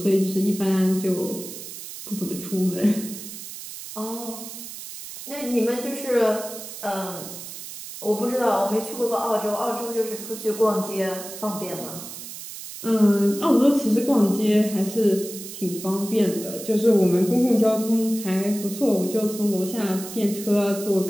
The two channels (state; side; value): noise; right; hiss, 11 dB below the sound